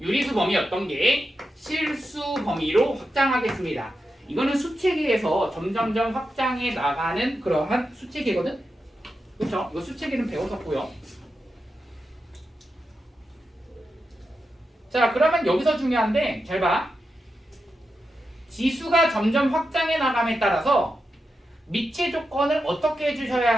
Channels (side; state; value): both; normal; correlation 0.89